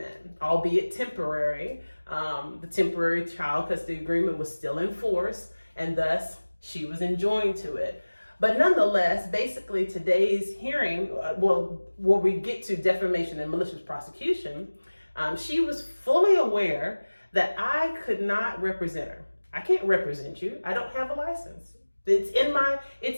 albeit temporary. The temporary child custody agreement was still in force, and thus she was enjoined to it. But nonetheless, basically today's hearing, where we get to defamation and malicious prosecution, she was fully aware that I could not represent her. I can't represent you. I don't have a license. It's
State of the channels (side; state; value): both; inverted; correlation -1.00